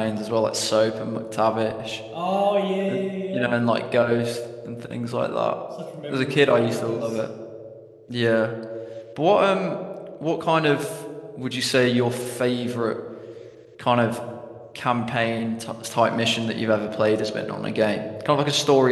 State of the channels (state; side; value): identical; both; correlation 1.00